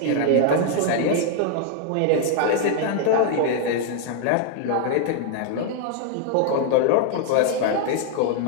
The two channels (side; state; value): both; different; correlation 0.00